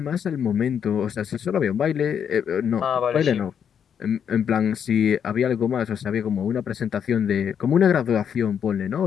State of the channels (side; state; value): right; quieter; 8.0 dB